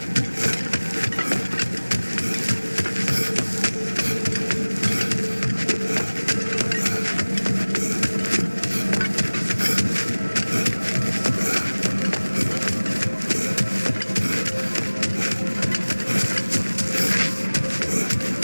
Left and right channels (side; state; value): both; inverted; correlation -1.00